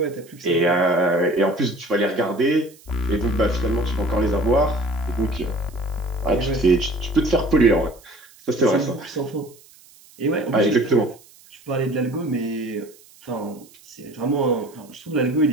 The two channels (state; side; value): noise; right; hiss, 25 dB below the sound